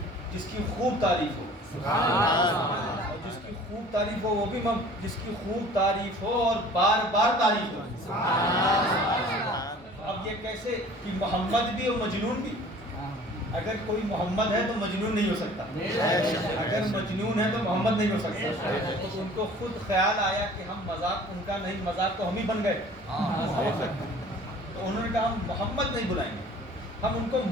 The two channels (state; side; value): normal; both; correlation 0.48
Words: جس کی خوب تعریف ہو، اور جس کی خوب تعریف ہو وہ بھی جس کی خوب تعریف ہو اور بار بار تعریف ہو۔ اب یہ کیسے کہ محمد بھی اور مجنون بھی؟ اگر کوئی محمد ہے تو مجنون نہیں ہو سکتا، اگر مجنون ہے تو محمد نہیں ہو سکتا۔ تو ان کو خود خیال آیا کہ ہم مذاق ان کا نہیں، مذاق تو ہم ہی بن گئے، تو انہوں نے کہا ہم محمد نہیں بلائیں گے، ہم ان کو